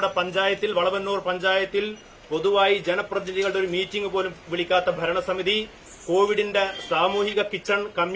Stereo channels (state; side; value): identical; both; correlation 1.00